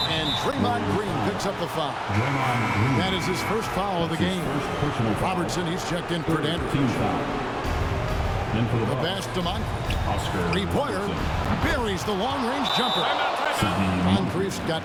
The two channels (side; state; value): both; identical; correlation 1.00